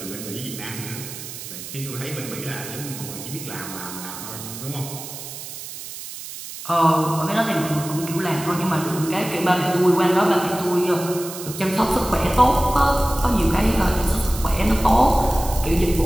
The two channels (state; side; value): noise; right; hiss, 11 dB below the sound